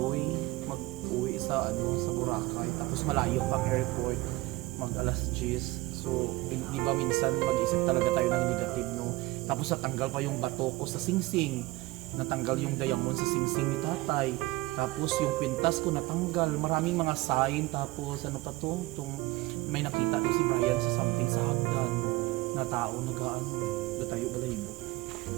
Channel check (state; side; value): quieter; left; 20.1 dB